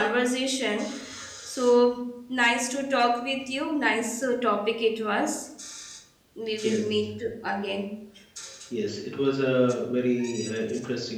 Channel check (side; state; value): both; identical; correlation 1.00